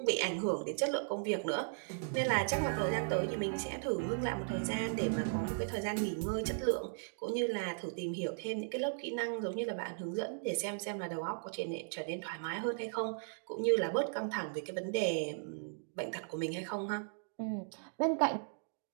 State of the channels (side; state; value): left; silent; digital silence